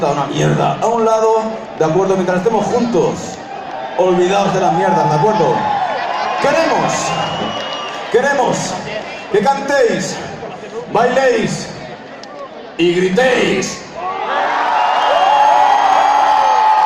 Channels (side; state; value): both; identical; correlation 1.00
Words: una mierda a un lado, ¿de acuerdo? Mientras estemos juntos, olvidaos de las mierdas, ¿de acuerdo? Queremos que cantéis, bailéis y gritéis.